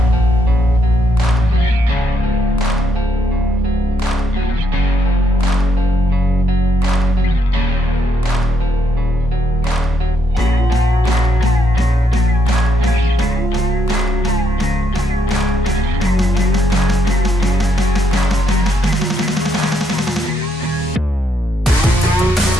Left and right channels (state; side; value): normal; both; correlation 0.75